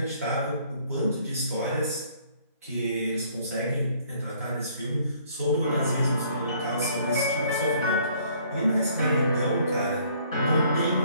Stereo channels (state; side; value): inverted; both; correlation -0.61